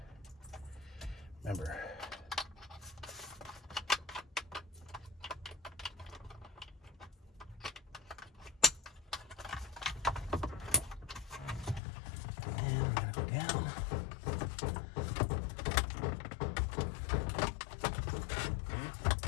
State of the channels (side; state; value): right; drops out; at 11.8 s